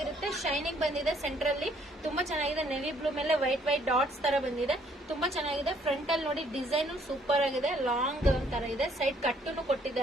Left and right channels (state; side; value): normal; both; correlation 0.64